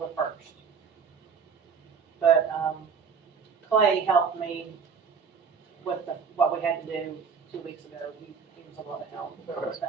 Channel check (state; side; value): quieter; left; 6.1 dB